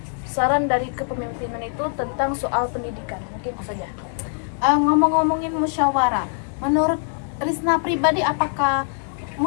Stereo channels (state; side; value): silent; right; 58 dB below the other